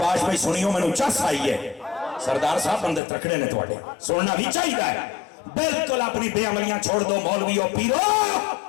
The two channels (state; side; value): drops out; right; at 3.0 s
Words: بھائی سنیوں میں نو چس آئی ہے سردار صاحب بندے ترکڑے نے توڑے سننا بھی چاہیے ہے بلکل اپنی بے عملیاں چھوڑ دو مولوی اور پیرو